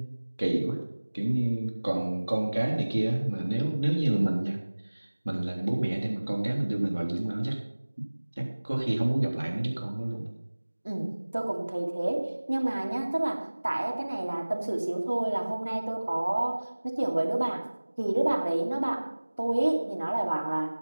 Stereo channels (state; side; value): inverted; both; correlation -1.00